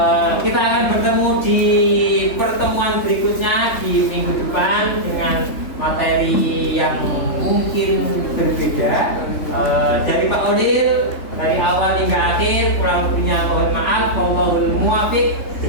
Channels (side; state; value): right; late; 3.3 ms